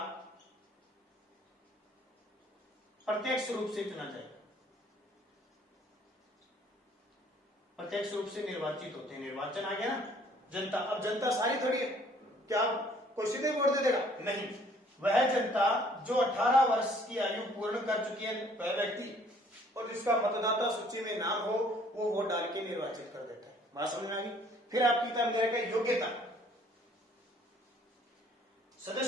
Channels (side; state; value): both; normal; correlation 0.59